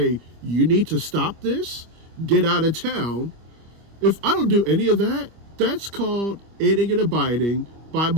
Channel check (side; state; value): left; late; 25 ms